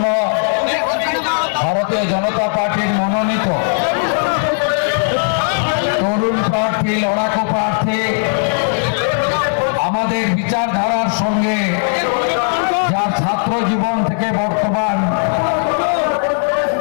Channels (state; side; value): silent; right; digital silence